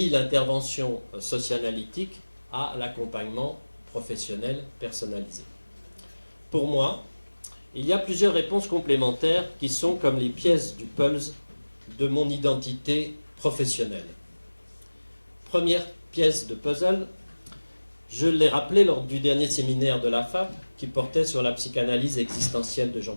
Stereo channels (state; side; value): inverted; both; correlation -1.00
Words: l'intervention socio-analytique à l'accompagnement professionnel personnalisé? Pour moi, il y a plusieurs réponses complémentaires qui sont comme les pièces du puzzle de mon identité professionnelle. Première pièce de puzzle, je l'ai rappelé lors du dernier séminaire de la FAP qui portait sur la psychanalyse existentielle de